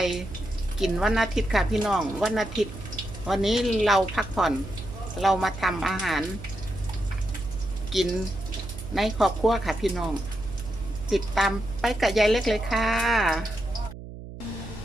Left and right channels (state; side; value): noise; right; hum, 13 dB below the sound